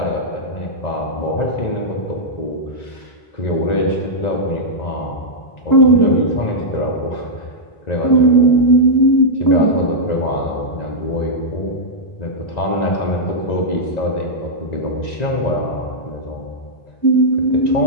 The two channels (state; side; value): late; right; 1.9 ms